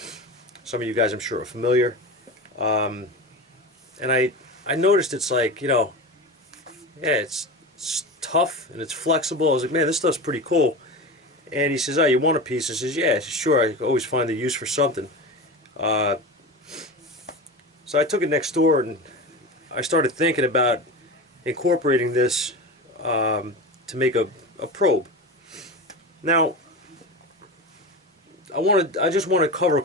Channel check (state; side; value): normal; both; correlation 0.26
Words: Some of you guys I'm sure are familiar. And I noticed it's like, yeah, it's tough and it's flexible. I was like, man, this stuff's pretty cool. And he says, oh, you want a piece? I says, yeah, sure. I always find the use for something. So I took it next door and I started thinking about incorporating this to make a probe. Now, I just want to cover a